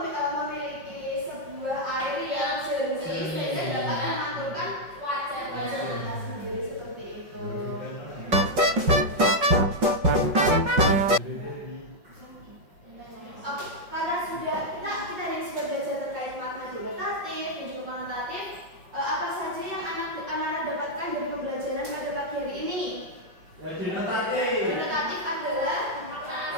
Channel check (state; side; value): late; left; 5.5 ms